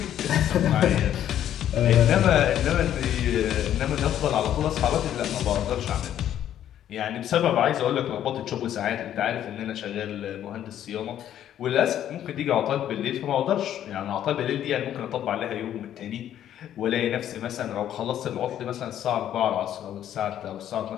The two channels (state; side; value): quieter; right; 11.0 dB